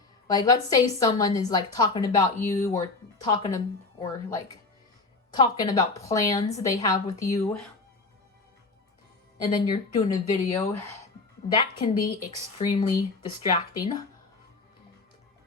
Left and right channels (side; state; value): right; quieter; 3.7 dB